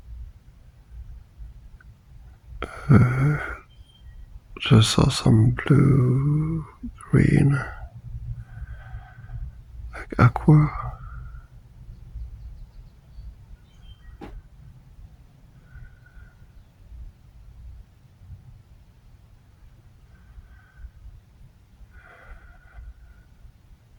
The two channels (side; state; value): both; identical; correlation 1.00